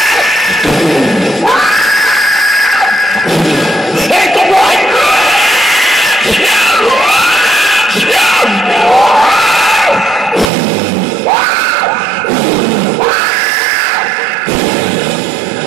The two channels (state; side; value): drops out; left; at 10.5 s